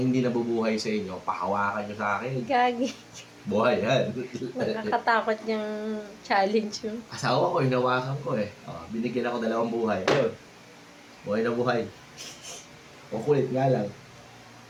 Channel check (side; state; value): both; identical; correlation 1.00